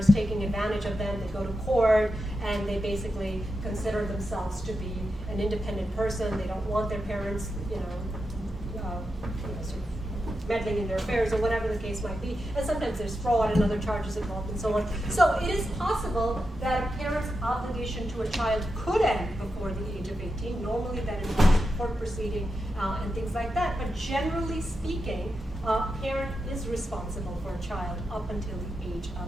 taking advantage of them. They go to court and they basically consider themselves to be an independent person. They don't want their parents, sort of meddling in their affairs or whatever the case might be. And sometimes there's fraud and other charges involved and so on. So it is possible that a parent's obligation to a child could end before the age of 18. Normally that involves court proceeding and things like that. But generally speaking, a parent is responsible for a child up until the age of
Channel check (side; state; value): both; normal; correlation 0.88